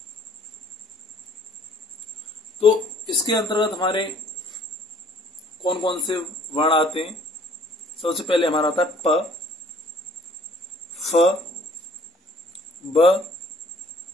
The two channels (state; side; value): normal; both; correlation 0.57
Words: तो इसके अंतर्गत हमारे कौन कौन से वर्ण आते हैं। सबसे पहले हमारा आता है प, फ, ब,